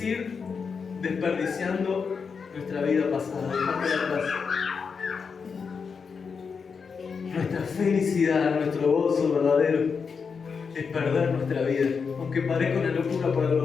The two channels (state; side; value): quieter; right; 5.6 dB